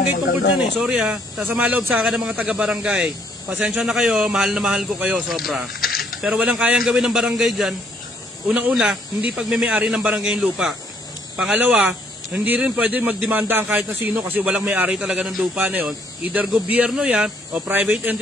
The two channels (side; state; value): both; normal; correlation 0.67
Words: tungkol dyan eh. Sorry sasama loob sa akin ng mga taga-barangay. Pasensya na kayo, mahal na mahal ko kayo, sobra. Pero walang kayang gawin ng barangay dyan. Unang-una, hindi pagmimay-ari ng barangay yung lupa. Pangalawa, hindi rin pwede magdemanda ang kahit na sino kasi walang may-ari talaga ng lupa na yun. Either gobyerno yan o private